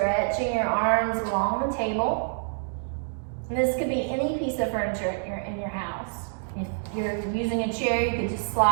your arms along the table. And this could be any piece of furniture in your house. If you're using a chair, you could just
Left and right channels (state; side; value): silent; left; digital silence